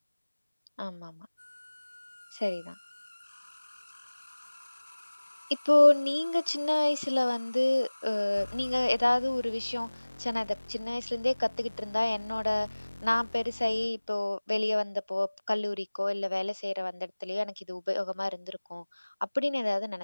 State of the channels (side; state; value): both; inverted; correlation -1.00